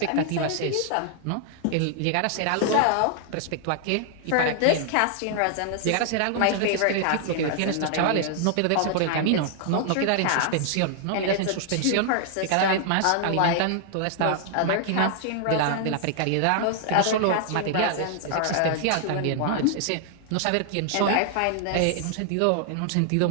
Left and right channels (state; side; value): different; both; correlation 0.00